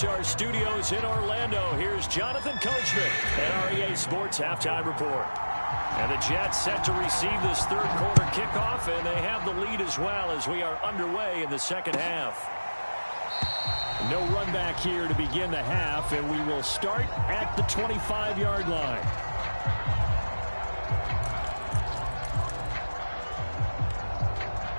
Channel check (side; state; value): both; inverted; correlation -1.00